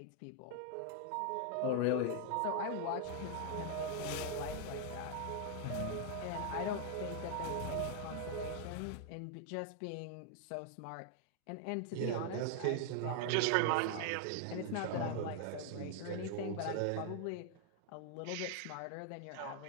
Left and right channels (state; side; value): different; both; correlation 0.00